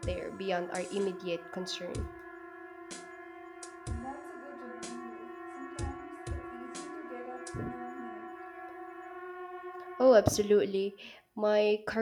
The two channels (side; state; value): both; identical; correlation 1.00